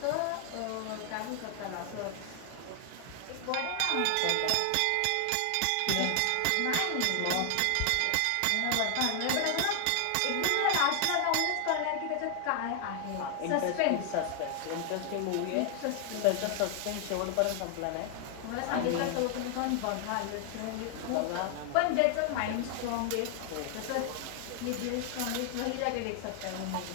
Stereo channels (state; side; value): different; both; correlation 0.00